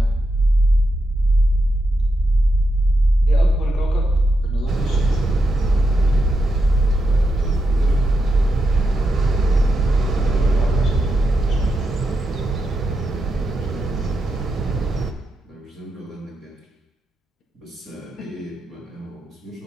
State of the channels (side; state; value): both; normal; correlation 0.85